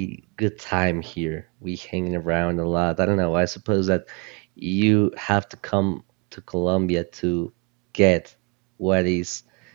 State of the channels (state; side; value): quieter; left; 28.2 dB